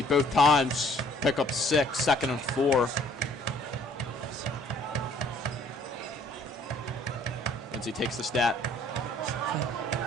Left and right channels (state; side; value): normal; both; correlation 0.59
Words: both times. Pick up 6, 2nd and 4. Lindsey takes the snap.